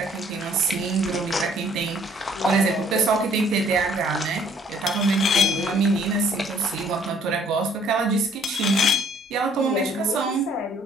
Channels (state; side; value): normal; both; correlation 0.60